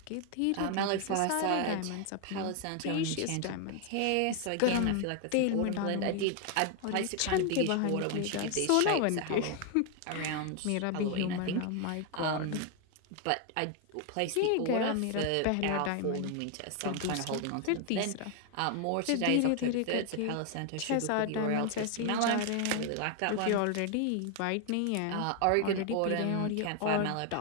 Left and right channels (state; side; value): different; both; correlation 0.00